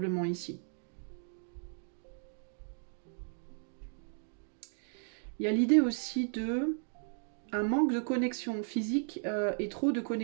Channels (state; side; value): silent; left; digital silence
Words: ici. Il y a l'idée aussi de un manque de connexion physique et trop de